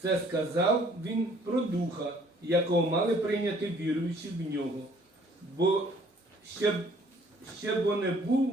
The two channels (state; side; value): normal; both; correlation 0.59